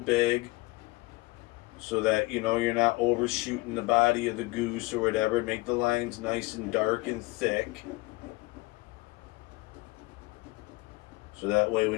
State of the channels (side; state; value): right; quieter; 22.6 dB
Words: so that you're not overshooting the body of the goose or whatever. Make the lines nice and dark and thick, so that way when